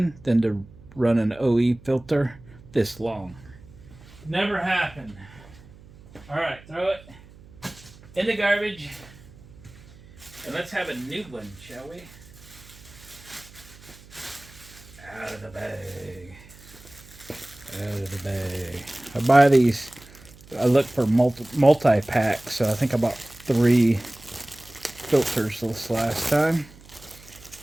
than to run an OE filter this long. Never happened. All right, throw it in the garbage, and let's have a new one, shall we? Out of the bag. Out of the bag. I buy these. I look for multi-packs, so I think I bought 3 filters this last time.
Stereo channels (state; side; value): noise; right; hum, 22 dB below the sound